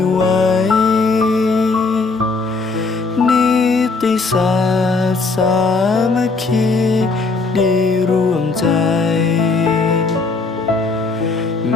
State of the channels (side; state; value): right; quieter; 3.9 dB